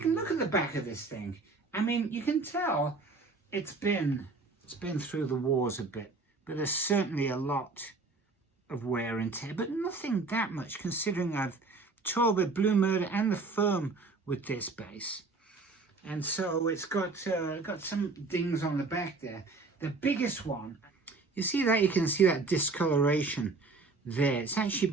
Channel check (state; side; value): quieter; left; 3.8 dB